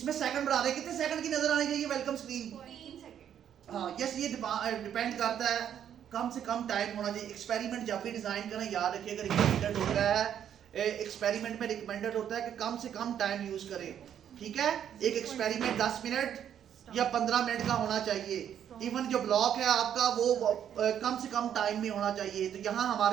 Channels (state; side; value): quieter; left; 9.5 dB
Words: सेकंड बढ़ा दें, कितने सेकंड की नजर आनी चाहिए वेलकम स्क्रीन? 3 सेकंड। हाँ यस, ये डिपेंड करता है, कम से कम टाइम होना चाहिए। एक्सपेरिमेंट जब भी डिजाइन करें याद रखिएगा रिकमेंडेड होता है, एक्सपेरिमेंट में रिकमेंडेड होता है कि कम से कम टाइम यूज करें। ठीक है, एक एक्सपेरिमेंट 10 मिनट या 15 मिनट का होना चाहिए। इवन जो ब्लॉक है आपका वो कम से कम टाइम में होना चाहिए। तो यहाँ